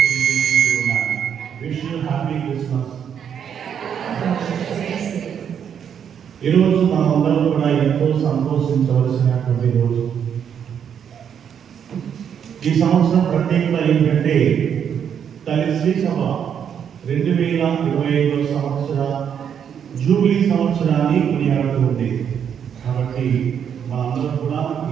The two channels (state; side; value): quieter; left; 8.2 dB